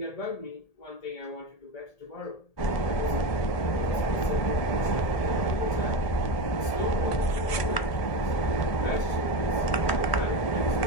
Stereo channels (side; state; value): right; late; 1.8 ms